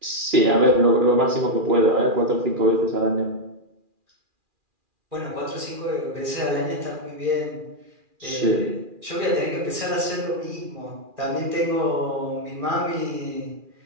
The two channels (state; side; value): late; left; 2.4 ms